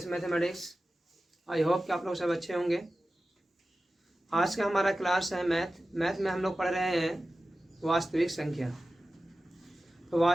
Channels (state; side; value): normal; both; correlation 0.95